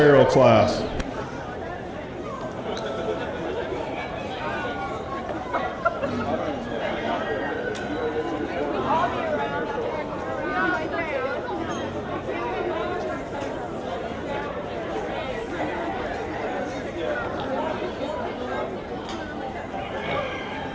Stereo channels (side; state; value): both; identical; correlation 1.00